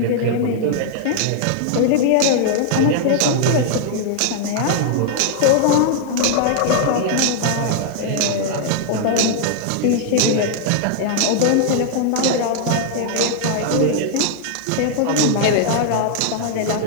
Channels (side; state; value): both; different; correlation 0.00